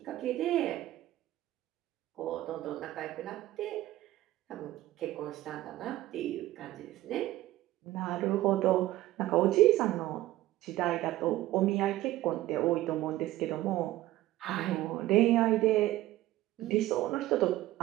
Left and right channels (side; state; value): left; quieter; 15.7 dB